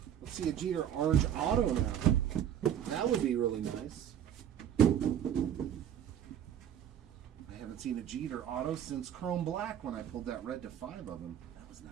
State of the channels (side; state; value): left; quieter; 9.9 dB